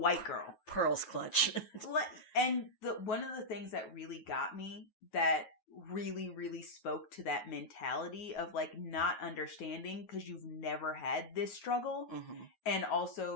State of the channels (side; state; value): right; late; 9.4 ms